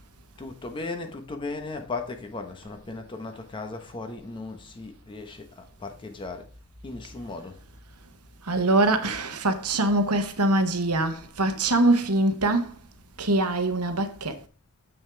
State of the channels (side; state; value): both; normal; correlation 0.28